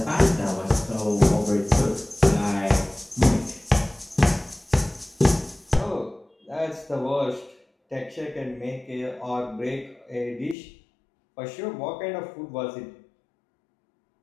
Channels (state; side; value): drops out; right; at 10.6 s